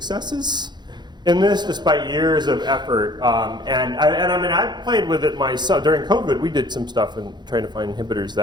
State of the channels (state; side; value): late; left; 0.21 ms